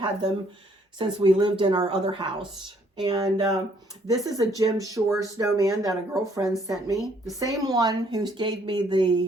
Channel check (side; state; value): both; normal; correlation 0.65